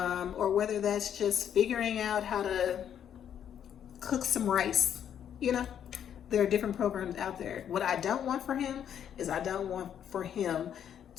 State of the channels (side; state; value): right; quieter; 9.2 dB